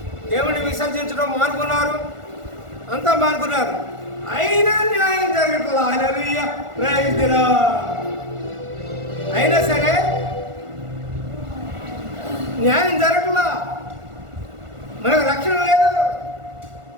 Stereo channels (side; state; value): left; late; 1.4 ms